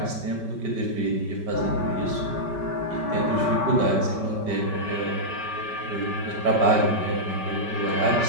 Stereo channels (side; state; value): left; late; 5.2 ms